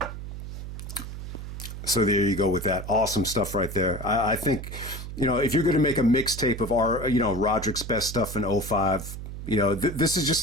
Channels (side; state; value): right; noise; hum, 9 dB below the sound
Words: So there you go with that. Awesome stuff right there. I think, if you're going to make a mixtape of Roderick's best stuff in 05, this is